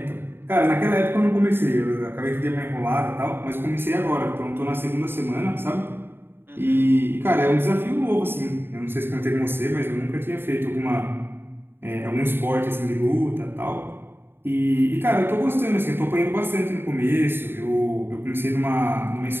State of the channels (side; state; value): left; late; 0.10 ms